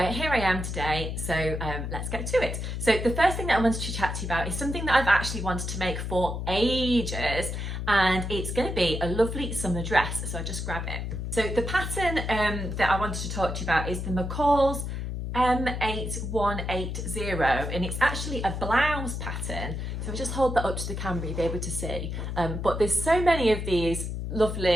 here I am today, so let's get to it. So the first thing that I wanted to chat to you about is something that I've actually wanted to make for ages, and it's going to be a lovely summer dress, so I just grab it. So the pattern that I wanted to talk to you about is the McCall's M8180, and it's actually a blouse pattern. So I just hold that up to the camera, you'll be able to see, but there's so many of these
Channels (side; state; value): left; noise; hum, 4 dB below the sound